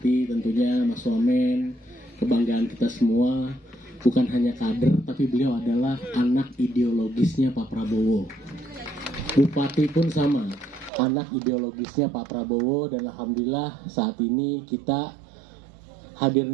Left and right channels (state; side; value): drops out; left; at 10.9 s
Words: Tentunya Mas Wamen, kebanggaan kita semua. Bukan hanya kader, tapi beliau adalah anak ideologisnya Pak Prabowo. Bupati pun sama, anak ideologisnya Pak Prabowo. Dan alhamdulillah saat ini kita hadir